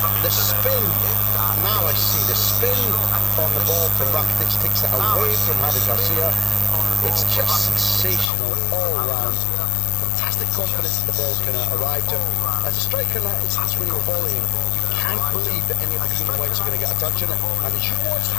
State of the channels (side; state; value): right; drops out; at 8.3 s